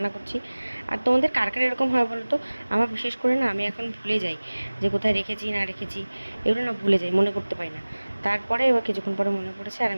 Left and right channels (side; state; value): both; inverted; correlation -1.00